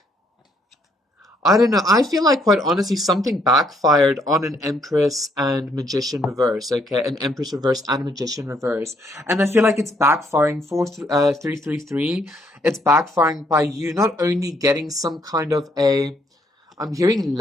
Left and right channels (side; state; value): both; normal; correlation 0.69